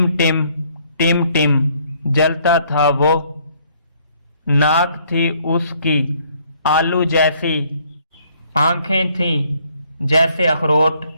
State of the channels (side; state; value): both; inverted; correlation -0.64